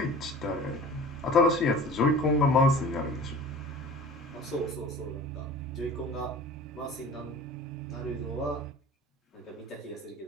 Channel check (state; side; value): normal; both; correlation 0.41